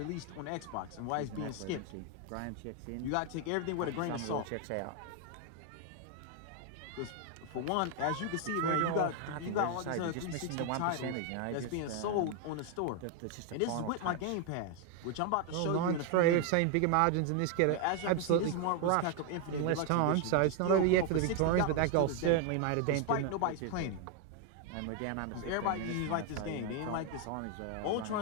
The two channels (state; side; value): different; both; correlation 0.01